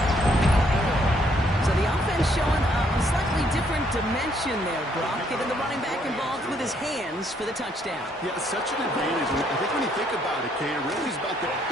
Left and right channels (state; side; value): normal; both; correlation 0.69